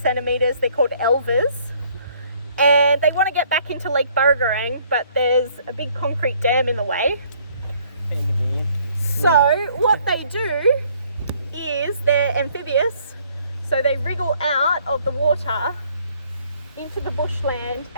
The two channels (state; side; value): inverted; both; correlation -0.62